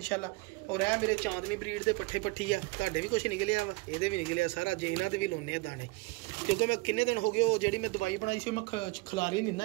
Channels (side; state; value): left; quieter; 24.5 dB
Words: ਔਰ ਇਹ ਮੇਰੇ ਚਾਂਦਨੀ ਬਰੀਡ ਦੇ ਪੱਠੇ ਪੱਠੀ ਆ, ਤੁਹਾਡੇ ਵੀ ਕੁਝ ਨਿਕਲਿਆ ਵਾ, ਇਹਦੇ ਵੀ ਨਿਕਲਿਆ ਸਾਰਾ। ਜੇ ਇਹਨਾਂ ਤੇ ਵੀ ਲਾਉਣੇ ਆ ਦਾਣੇ, ਕਿਉਂਕਿ ਮੈਂ ਕਿੰਨੇ ਦਿਨ ਹੋ ਗਏ ਉਹ ਜਿਹੜੀ ਮੈਂ ਦਵਾਈ ਬਣਾਈ ਸੀ ਮੈਂ ਖਿਲਾਰੀ ਨਹੀਂ